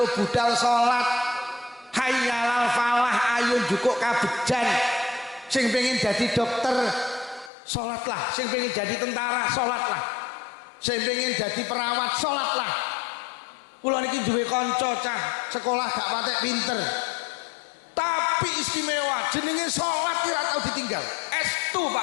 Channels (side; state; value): right; drops out; at 7.5 s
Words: budal salat, hayyalal falah, ayo jukuk kabejan. Sing pengen jadi dokter salatlah, sing pengen jadi tentara salatlah, sing pengen jadi perawat salatlah. Kula niki duwe kanca cah sekolah gak patek pinter, tapi istimewa, jenenge salat ora tau ditinggal. Estu